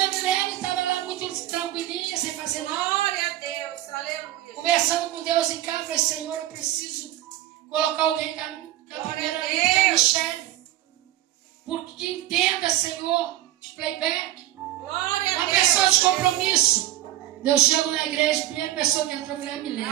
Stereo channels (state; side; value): quieter; left; 13.9 dB